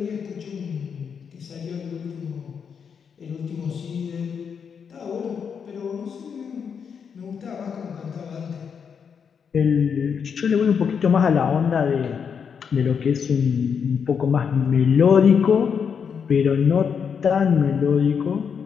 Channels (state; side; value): quieter; right; 6.8 dB